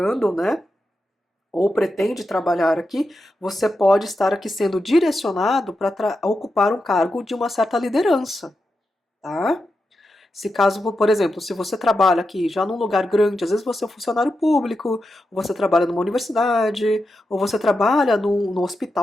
né? Ou pretende trabalhar aqui, você pode estar aqui sendo direcionado para ocupar um cargo de uma certa liderança, tá? Se caso, por exemplo, se você trabalha aqui já num lugar grande, às vezes você é um funcionário público, ou você trabalha numa universidade, ou você trabalha num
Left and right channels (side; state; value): both; normal; correlation 0.88